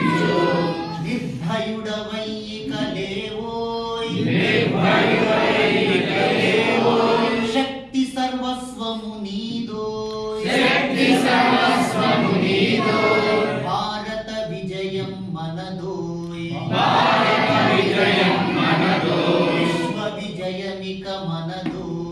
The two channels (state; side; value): identical; both; correlation 1.00